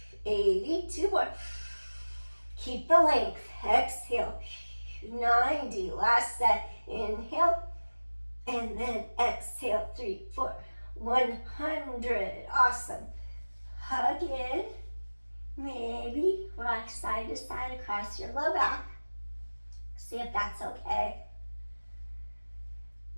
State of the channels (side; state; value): both; inverted; correlation -1.00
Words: 80. 2 more. Keep the length, exhale, 90. Last set, inhale. And then exhale, 3, 4, 100. Awesome. Hug in. Maybe rock side to side across your low back. See if that's okay.